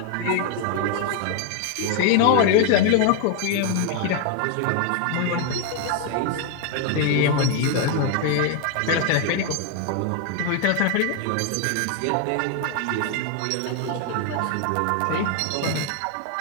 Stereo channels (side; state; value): both; different; correlation 0.01